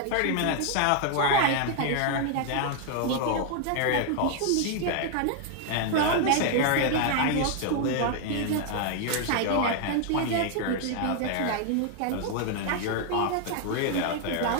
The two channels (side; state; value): both; different; correlation 0.00